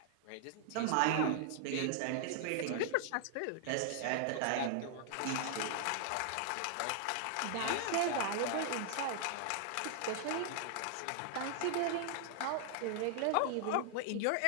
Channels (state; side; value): different; both; correlation 0.00